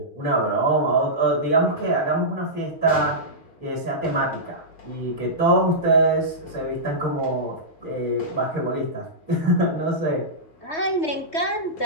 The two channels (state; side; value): late; right; 3.2 ms